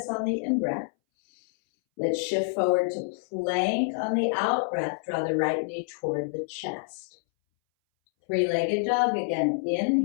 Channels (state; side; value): silent; right; 60 dB below the other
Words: on the in-breath. Let's shift forward to plank on the out-breath. Draw the right knee toward the chest. Three-legged dog again.